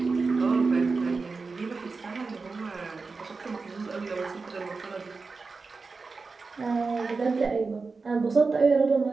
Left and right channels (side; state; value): left; quieter; 4.3 dB